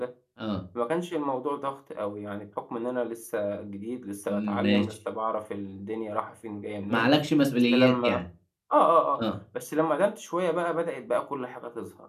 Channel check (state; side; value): identical; both; correlation 1.00